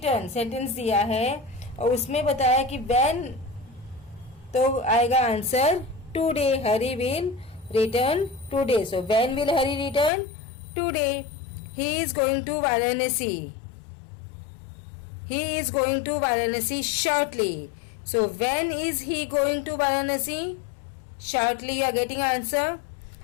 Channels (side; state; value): right; drops out; at 10.1 s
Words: sentence दिया है और उसमें बताया कि व्हेन तो आएगा answer today. Hari will return today. So when will Hari return? Today. He is going to Varanasi. He is going to Varanasi shortly. So when is he going to Varanasi? Shortly. You are getting answer.